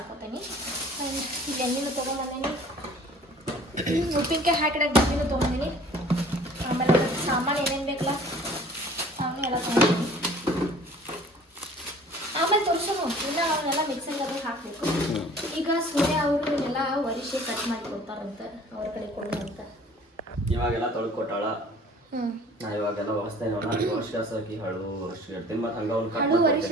ಆ್ಯಂಡ್ ಇಲ್ಲಿ ಎಣ್ಣೆನೂ ತೊಗೊಂಬಂದೀನಿ, ಉಪ್ಪಿನಕಾಯಿ ಹಾಕಿಡಕ್ಕೆ ಡಬ್ಬಿನೂ ತೊಗೊಂಡಿನಿ. ಆಮೇಲೆ ಸಾಮಾನು ಏನೇನು ಬೇಕಲ್ಲ ಸಾಮಾನು ಎಲ್ಲ ತೊಗೊಂಡಿನಿ. ಆಮೇಲೆ ತೋರಿಸೋನು ಇಲ್ಲ ಅವನ್ನೆಲ್ಲ ಮಿಕ್ಸಿಂಗ್ ಅದು ಹಾಕಬೇಕು. ಈಗ ಸೂರ್ಯ ಅವರು ಎಲ್ಲ ವರಿಷೆ ಕಟ್ ಮಾಡಿ ಕೊಡ್ತಾರಂತ, ಅವ್ರ ಕಡೆ ಕೊಡು ಅಂತ. ಇವಾಗೆಲ್ಲ ತೊಳ್ಕೊಟ್ಟಾಳ. ನಾ ಇವಾಗೆಲ್ಲ ಹೊಸದೇನ ವರ್ಷ ಹಾಕಿ ಹಳು ವರ್ಷ ಇಡ್ತೀನಿ. ಮತ್ತೆ ಹಂಗ ಒಂದು ಹಳು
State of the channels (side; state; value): both; normal; correlation 0.50